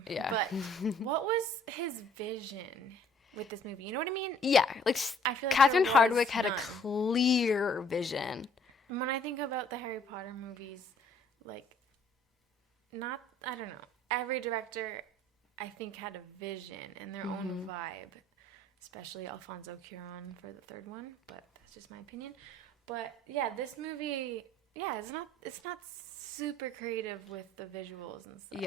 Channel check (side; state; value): both; normal; correlation 0.59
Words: Yeah. But what was his vision with this movie? You know what I mean? Yeah, like I feel like Catherine there was Hardwicke had a none. clear vision. When I think about the Harry Potter movies, like, I don't know. Every director, I think, had a vision and their own vibe. Especially Alfonso Cuarón for the third one, but that's just my opinion. But yeah, this movie, it's not super creative with the visuals and stuff.